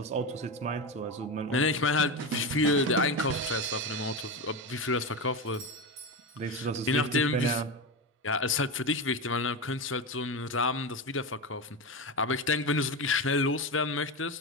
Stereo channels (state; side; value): normal; both; correlation 0.17